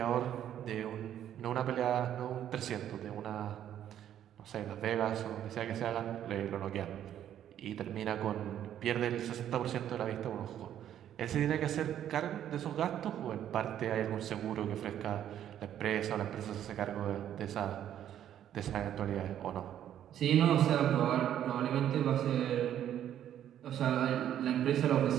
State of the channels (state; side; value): quieter; left; 10.7 dB